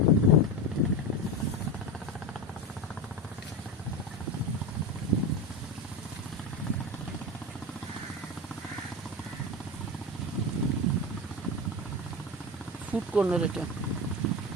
ফুড কর্নার এটা।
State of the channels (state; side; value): normal; both; correlation 0.21